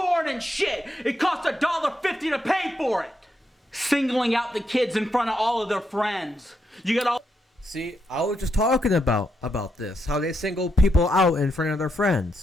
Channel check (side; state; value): both; normal; correlation 0.81